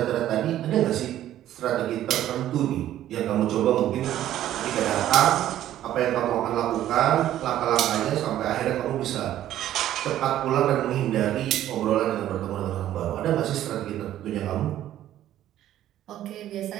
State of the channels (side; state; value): left; quieter; 12.5 dB